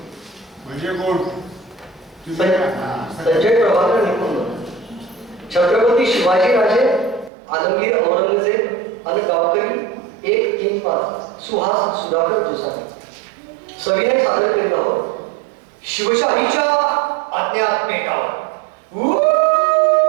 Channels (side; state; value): left; drops out; at 7.3 s